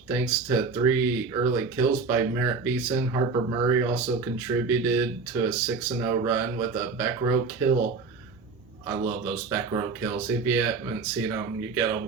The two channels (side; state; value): left; quieter; 4.6 dB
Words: thanks to 3 early kills by Merritt Beeson. Harper Murray also contributed to a 6-0 run with a back row kill. I love those back row kills. If you haven't seen them, you get